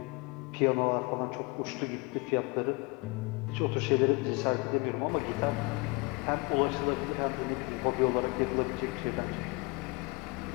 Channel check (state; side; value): quieter; right; 27.4 dB